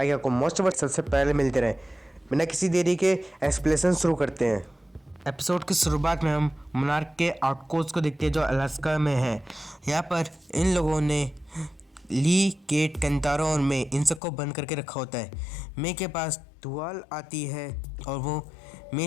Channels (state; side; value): drops out; right; at 14.2 s